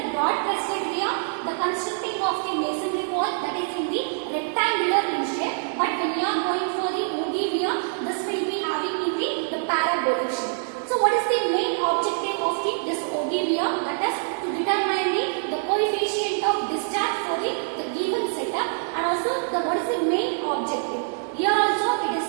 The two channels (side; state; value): left; silent; digital silence